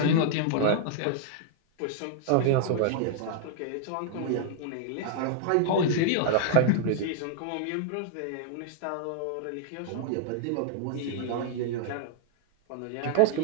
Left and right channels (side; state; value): both; different; correlation -0.01